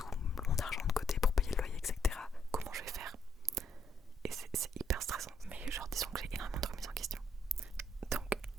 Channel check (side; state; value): both; normal; correlation 0.73